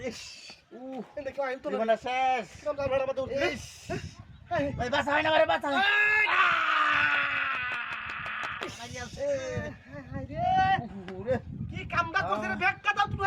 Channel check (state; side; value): identical; both; correlation 1.00